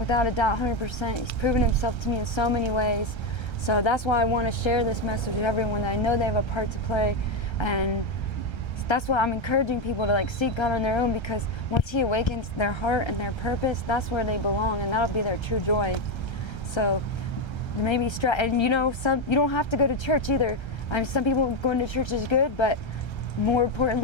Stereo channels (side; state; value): right; late; 1.3 ms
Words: a doubt, 100%. He's proven himself to me in so many ways. So that's why I want to share this message with everyone, that I know they have a part to play. And that's why I'm encouraging people to like seek God on their own, because once he awakens their heart and their purpose, that's where they belong, and that'll be their true joy. So maybe and you know, you don't have to go to church either. I mean, some people going to church is good, but more